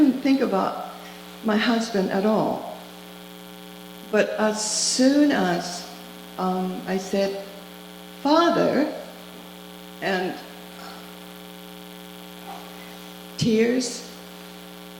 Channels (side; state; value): both; identical; correlation 1.00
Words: think about my husband at all. But as soon as I said, "Father," and tears